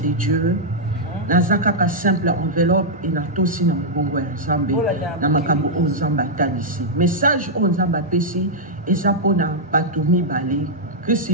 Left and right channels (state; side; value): normal; both; correlation -0.07